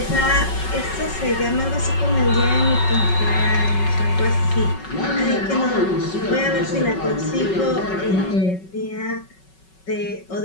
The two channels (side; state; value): right; late; 5.3 ms